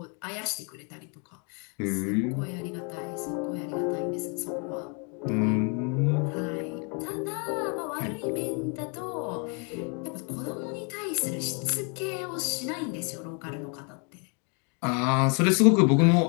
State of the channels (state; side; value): quieter; right; 36.4 dB